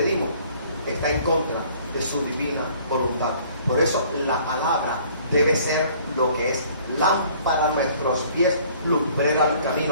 está en contra de su divina voluntad. Por eso la palabra debe ser lo que es lámpara a nuestros pies, lumbrera al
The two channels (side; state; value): both; inverted; correlation -0.56